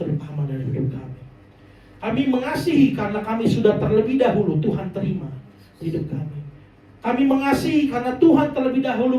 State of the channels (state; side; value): identical; both; correlation 1.00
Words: dari hidup kami. Kami mengasihi karena kami sudah terlebih dahulu Tuhan terima hidup kami. Kami mengasihi karena Tuhan terlebih